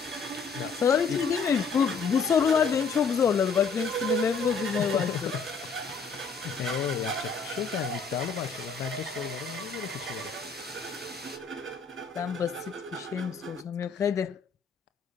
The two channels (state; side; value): quieter; right; 5.1 dB